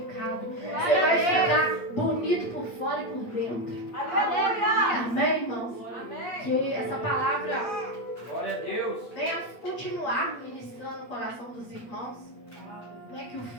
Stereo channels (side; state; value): right; late; 8.4 ms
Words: Você vai ficar bonito por fora e por dentro. Amém, irmãos? Que essa palavra Glória a Deus. venha continuar ministrando no coração dos irmãos. Não é que o